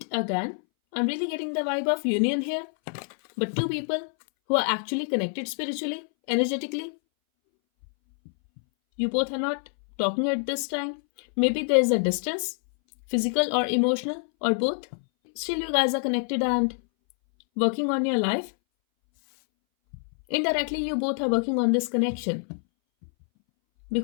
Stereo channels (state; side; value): silent; right; 60 dB below the other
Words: again. I'm really getting the vibe of union here, but two people who are actually connected spiritually, energetically. You both are not talking at this time. Maybe there is a distance, physical or emotional, or both. Still, you guys are connected and working on your life. Indirectly, you both are working on this connection